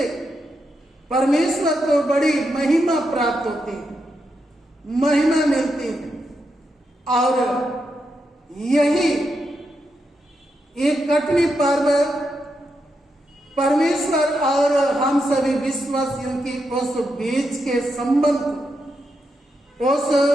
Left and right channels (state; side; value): normal; both; correlation 0.84